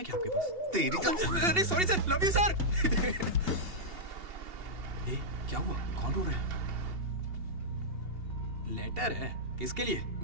क्या आपके पास? तेरी अरे sorry sir, love you sir. क्या हुआ? कौन रो रहा है? लेटर है? किसके लिए?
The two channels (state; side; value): late; left; 2.8 ms